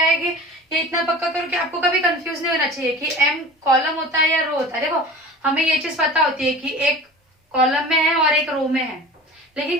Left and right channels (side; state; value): both; normal; correlation 0.38